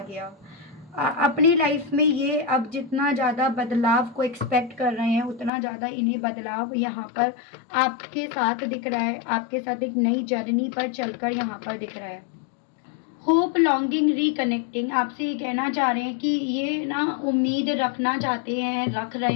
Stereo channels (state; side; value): drops out; right; at 5.5 s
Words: अपनी लाइफ में ये अब जितना ज़्यादा बदलाव को एक्सपेक्ट कर रहे हैं उतना ज़्यादा इन्हें बदलाव यहाँ पर आपके साथ दिख रहा है, आपके साथ एक नई जर्नी पर चलकर यहाँ पर दिख रहा है। होप, लॉन्गिंग, रिकनेक्टिंग, आपसे ये कहना चाह रहे हैं कि ये ना उम्मीद रखना चाहते हैं, रख रहे